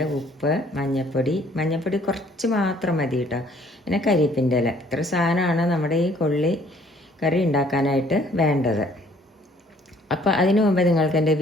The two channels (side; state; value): both; normal; correlation 0.59